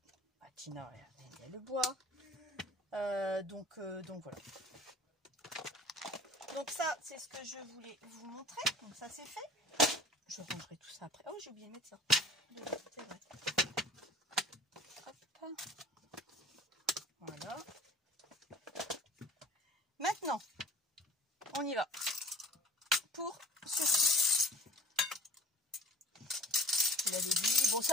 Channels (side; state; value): both; normal; correlation 0.47